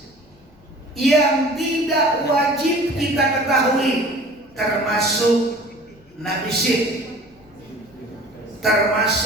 yang tidak wajib kita ketahui, termasuk Nabi Syed,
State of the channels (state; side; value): noise; left; rumble, 29 dB below the sound